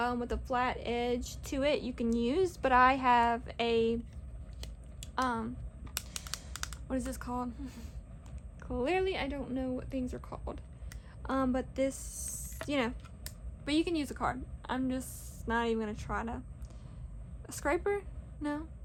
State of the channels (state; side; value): identical; both; correlation 1.00